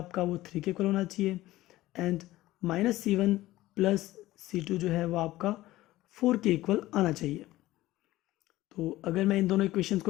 वो 3 के इक्वल होना चाहिए and minus c1 plus c2 जो है वो आपका 4 के इक्वल आना चाहिए। तो अगर मैं इन दोनों इक्वेशंस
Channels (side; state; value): right; quieter; 16.6 dB